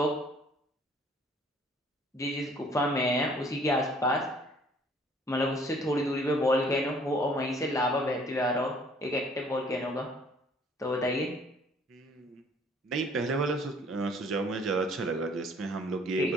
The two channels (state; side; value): normal; both; correlation 0.58